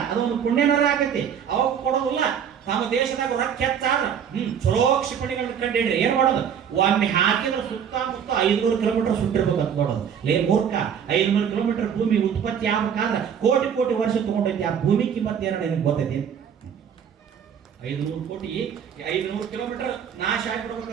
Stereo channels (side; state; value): left; quieter; 8.0 dB